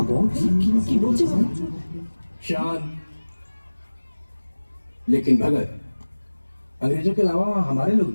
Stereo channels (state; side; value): inverted; both; correlation -1.00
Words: शान। लेकिन भगत, अंग्रेजों के अलावा वहां हमारे लोग